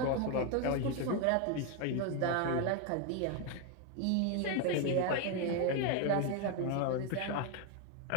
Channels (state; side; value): different; both; correlation 0.01